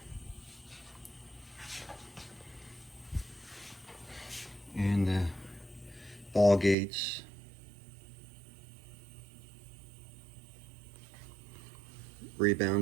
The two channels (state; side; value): drops out; left; at 6.8 s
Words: and the ball gates,